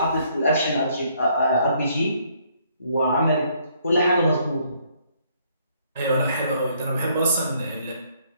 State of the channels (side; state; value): both; inverted; correlation -0.67